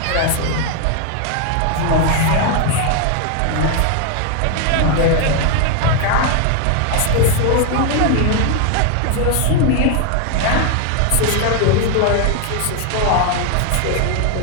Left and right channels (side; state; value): both; different; correlation 0.01